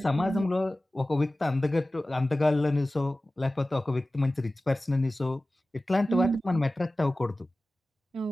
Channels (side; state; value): both; normal; correlation 0.96